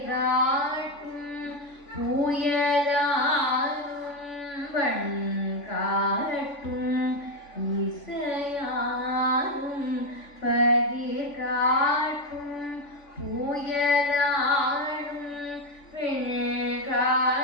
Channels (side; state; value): right; late; 3.5 ms